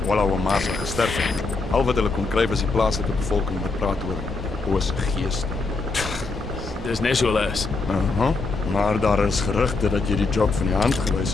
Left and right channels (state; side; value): quieter; right; 3.8 dB